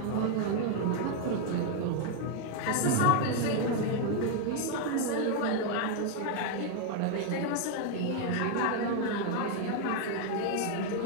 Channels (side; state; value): both; different; correlation 0.00